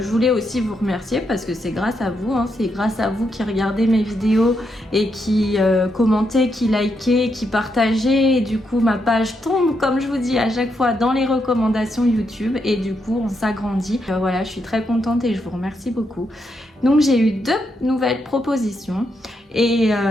voulais aussi vous remercier parce que c'est grâce à vous, hein, c'est grâce à vous qui regardez mes vidéos et qui commentez, qui likez, qui partagez, et du coup ma page tombe, comme je vous dis à chaque fois, dans les recommandations YouTube et du coup on s'agrandit. Voilà, je suis très contente et je vous remercie beaucoup. Donc j'ai eu 2 nouvelles propositions et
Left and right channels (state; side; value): normal; both; correlation 0.80